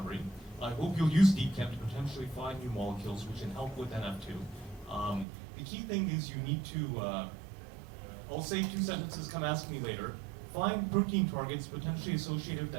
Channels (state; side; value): drops out; left; at 5.2 s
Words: I hope you'll use DeepChem to potentially find new molecules which can help with NF2. The key thing is you need to, I'll say 2 sentences, come ask me later. Find protein targets potentially associated with